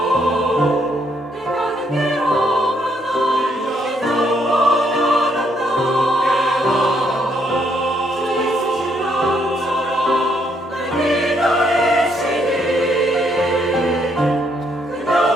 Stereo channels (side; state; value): both; normal; correlation 0.72